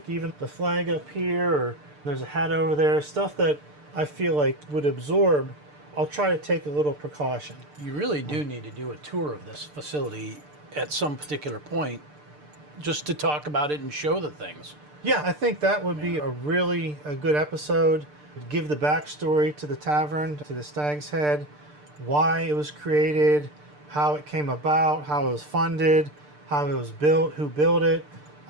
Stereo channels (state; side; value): late; left; 6.7 ms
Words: even the flag up here, or there's a hat over there, stuff that I feel like would absorb. I'll try to take a little precaution. You really do need to do a tour of this facility at some particular point just to talk about it and show the things. Yeah, I think that would be a good episode. Give the backstory to the tavern, to the Stag's Head, why it was created, how it came about, how it was funded, how it was built, who built it.